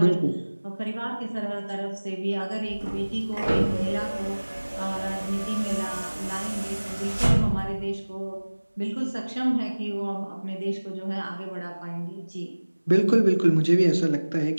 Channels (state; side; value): inverted; both; correlation -1.00